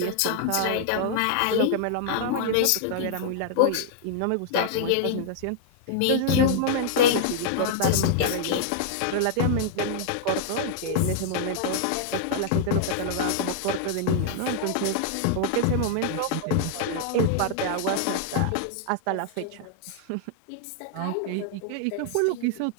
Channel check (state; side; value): different; both; correlation -0.01